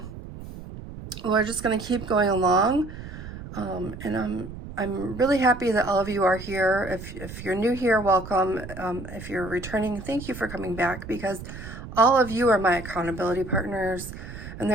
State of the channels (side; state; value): right; noise; rumble, 12 dB below the sound